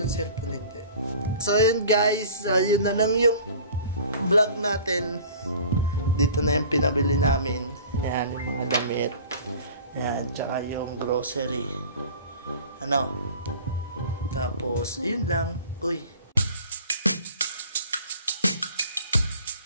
cellphone hindi? So yun guys, yun na lang yung vlog natin. Dito na yung pinabili namin. Yan, yung mga damit. Yan, tsaka yung grocery. Tapos, yun lang. Uy.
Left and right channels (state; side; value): inverted; both; correlation -0.45